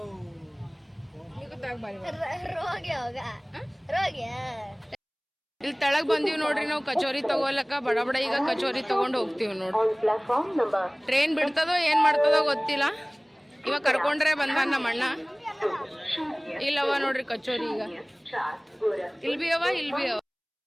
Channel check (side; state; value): both; identical; correlation 1.00